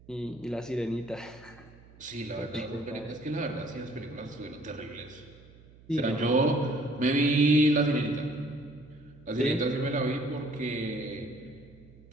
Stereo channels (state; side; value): noise; right; hum, 23 dB below the sound